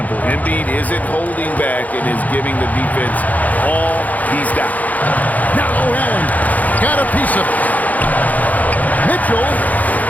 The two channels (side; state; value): right; late; 0.078 ms